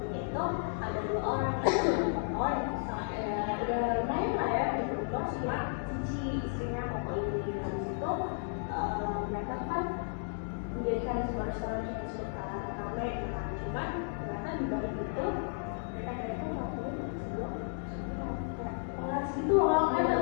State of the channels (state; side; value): silent; right; digital silence